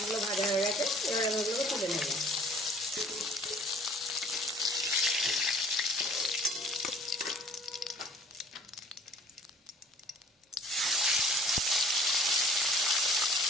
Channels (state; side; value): normal; both; correlation 0.52